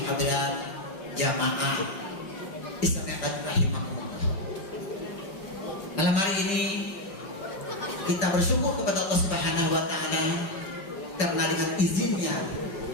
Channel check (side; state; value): right; late; 5.0 ms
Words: hadirat jamaah Islamiyah rahimahumullah. Malam hari ini kita bersyukur kepada Allah Subhanahu wa taala karena dengan izinnya